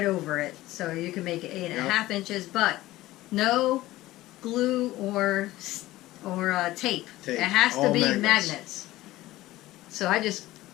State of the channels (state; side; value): quieter; right; 16.9 dB